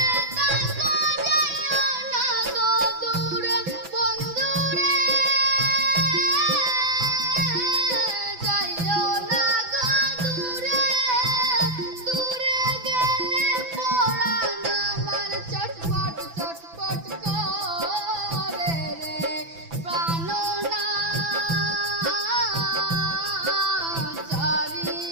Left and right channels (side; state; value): left; late; 6.0 ms